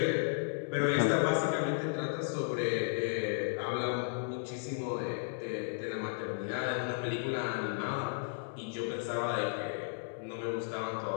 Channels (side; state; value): right; silent; digital silence